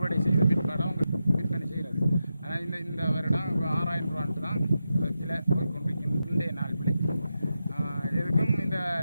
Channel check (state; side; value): inverted; both; correlation -0.88